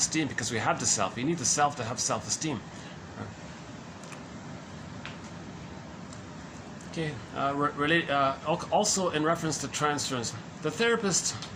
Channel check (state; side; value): identical; both; correlation 1.00